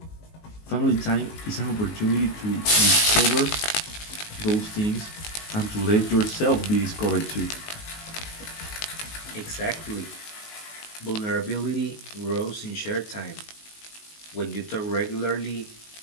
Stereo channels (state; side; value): late; right; 19 ms